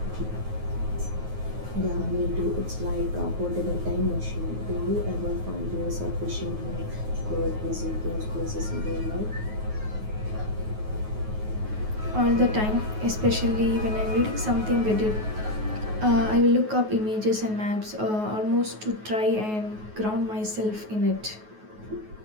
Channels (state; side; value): late; left; 9.4 ms